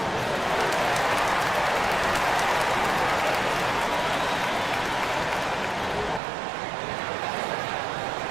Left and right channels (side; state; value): left; drops out; at 6.2 s